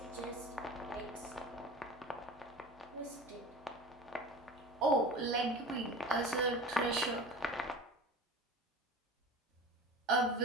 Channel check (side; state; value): both; normal; correlation 0.35